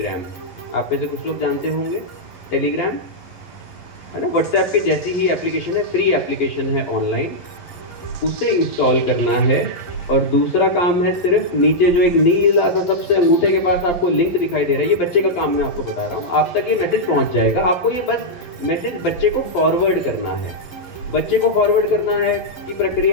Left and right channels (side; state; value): right; late; 11 ms